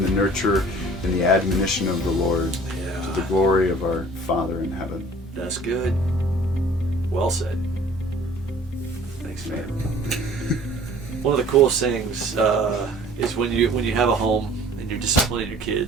the nurture and the admonition of the Lord, to the glory of our Father in heaven. That's good. Well said. Thanks, man. One of the coolest things is when you have a home and you're disciplining your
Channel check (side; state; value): both; normal; correlation 0.50